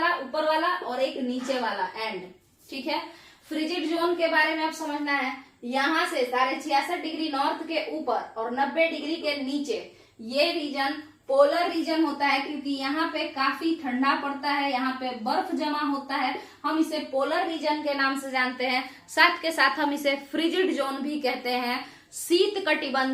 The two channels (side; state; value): both; identical; correlation 1.00